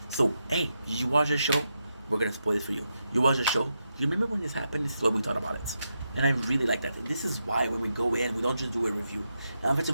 So, hey, did you watch the show? We're gonna spoil it for you. You watch the show? You remember when this happened? This is what we thought about it. And I really like that. This is why when we go in, we don't just do a review. Now, if it's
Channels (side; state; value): both; inverted; correlation -0.85